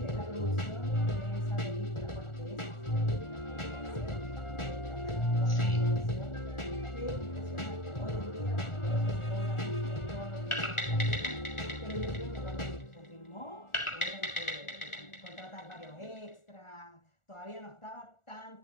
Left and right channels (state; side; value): late; right; 1.4 ms